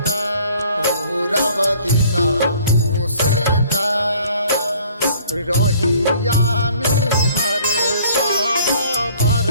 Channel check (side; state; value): both; inverted; correlation -0.56